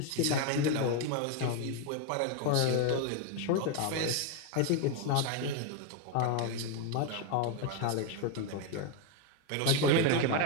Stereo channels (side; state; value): both; different; correlation 0.01